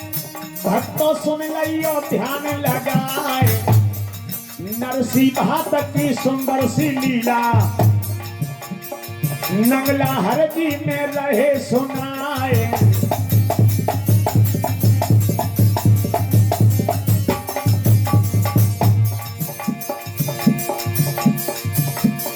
भक्तों सुन रही और ध्यान लगाए। नरसी भात की सुंदर सी लीला, नंगला हरदी में रहे सुनाए।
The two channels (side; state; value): both; identical; correlation 1.00